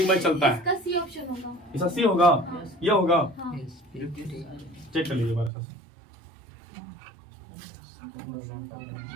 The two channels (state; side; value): drops out; left; at 5.5 s